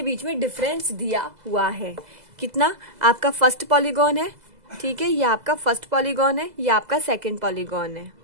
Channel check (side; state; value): left; late; 2.0 ms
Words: बीच में डिफरेंस दिया हुआ है कितना। आपका फर्स्ट पॉलीगॉन है, ठीक है, ये आपका फर्स्ट पॉलीगॉन है, ये आपका सेकंड पॉलीगॉन है।